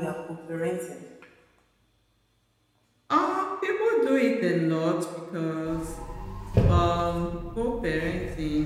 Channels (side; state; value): both; identical; correlation 1.00